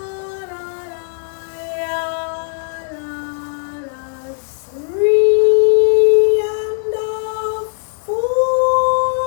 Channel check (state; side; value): silent; right; 67 dB below the other